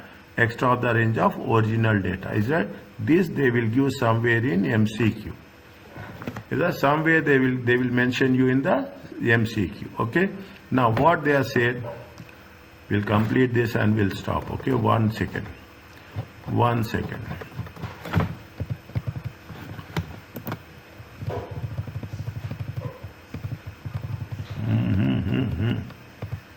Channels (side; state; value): both; identical; correlation 1.00